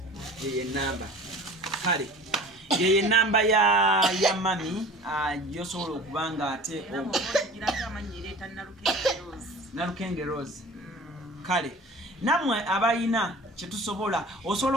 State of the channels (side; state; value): both; normal; correlation 0.42